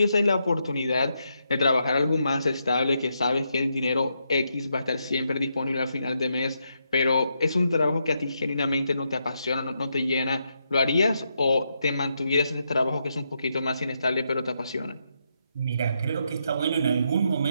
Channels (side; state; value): both; inverted; correlation -0.81